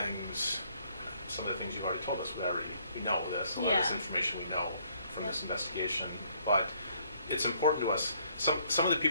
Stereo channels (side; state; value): both; inverted; correlation -0.66